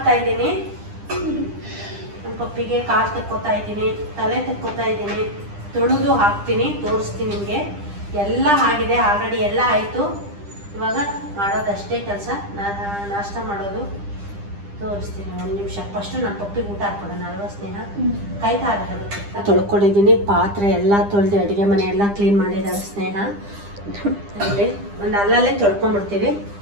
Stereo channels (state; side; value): late; left; 10 ms